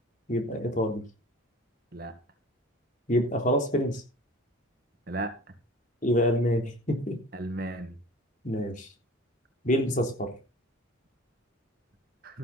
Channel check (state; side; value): normal; both; correlation 0.42